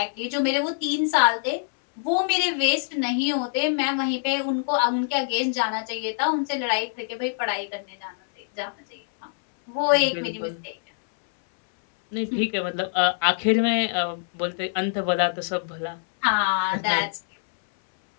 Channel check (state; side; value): silent; right; 62 dB below the other